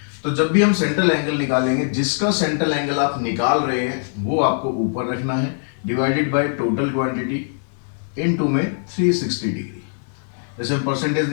तो जब भी हम सेंट्रल एंगल निकालेंगे, जिसका सेंट्रल एंगल आप निकाल रहे हैं वो आपको ऊपर रखना है, divided by total quantity into में 360 डिग्री। जैसे हम परसेंटेज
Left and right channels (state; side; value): silent; right; digital silence